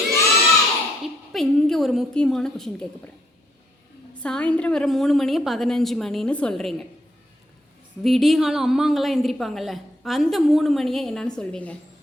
இப்போ இங்கே ஒரு முக்கியமான கொஷின் கேட்க போகிறேன். சாயந்தரம் வர 3 மணியை 15 மணின்னு சொல்கிறீங்க. விடிகாலம் அம்மாங்கெல்லாம் எந்திரிப்பாங்கல்ல, அந்த 3 மணியை என்னன்னு சொல்வீங்க?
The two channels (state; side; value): normal; both; correlation 0.73